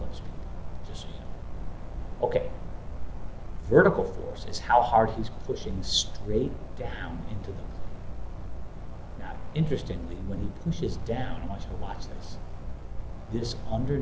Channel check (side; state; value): both; identical; correlation 1.00